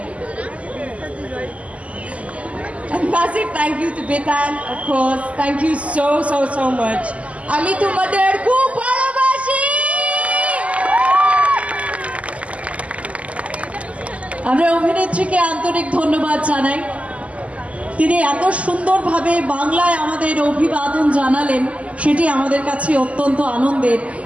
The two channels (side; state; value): left; late; 0.066 ms